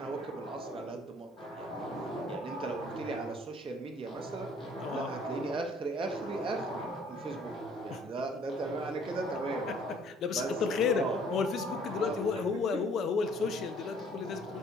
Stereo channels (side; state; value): both; normal; correlation 0.58